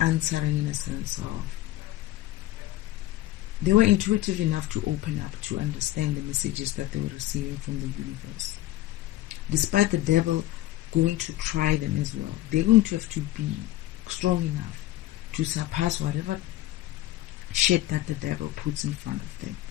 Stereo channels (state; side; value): quieter; right; 15.1 dB